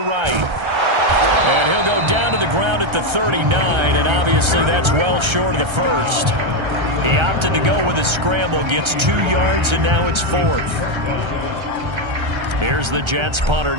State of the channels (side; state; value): left; late; 1.3 ms